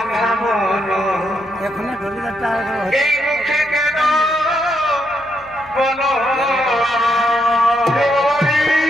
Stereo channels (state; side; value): noise; left; hum, 27 dB below the sound